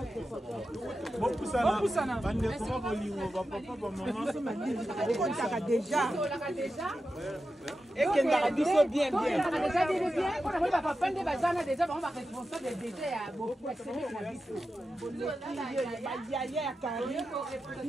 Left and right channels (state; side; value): normal; both; correlation 0.91